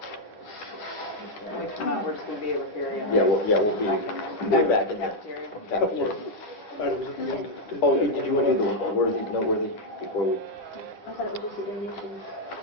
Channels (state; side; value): late; right; 10 ms